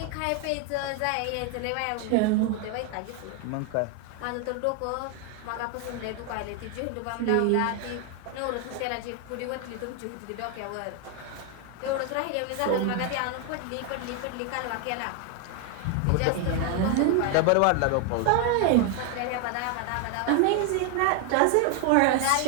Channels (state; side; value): different; both; correlation 0.01